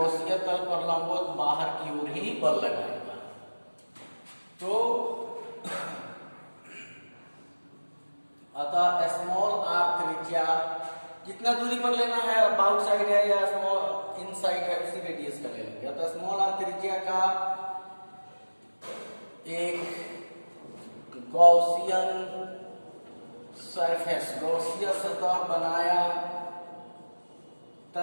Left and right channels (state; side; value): inverted; both; correlation -1.00